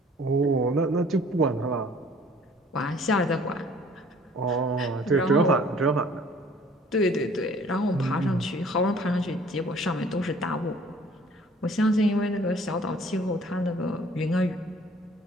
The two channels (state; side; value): normal; both; correlation 0.54